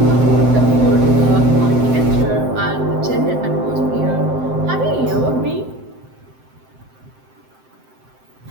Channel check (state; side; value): late; left; 7.7 ms